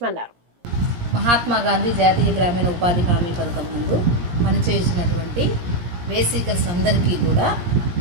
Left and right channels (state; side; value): late; left; 17 ms